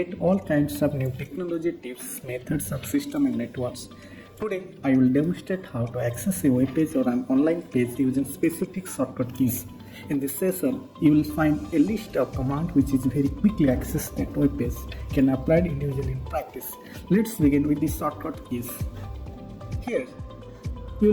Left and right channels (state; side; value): identical; both; correlation 1.00